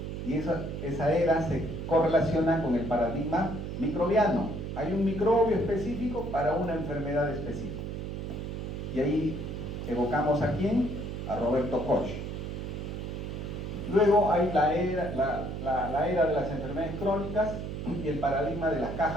y esa era se correlaciona con el paradigma microbiano. Hay un microbio específico para una enfermedad específica. Y ahí evocamos a quién? A Roberto Koch. Luego hay la era de las enfermedades crónicas y el paradigma de las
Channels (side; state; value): right; noise; hum, 5 dB below the sound